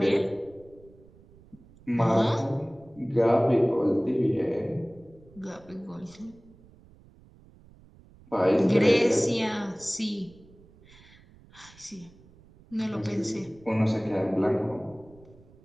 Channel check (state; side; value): noise; right; rumble, 25 dB below the sound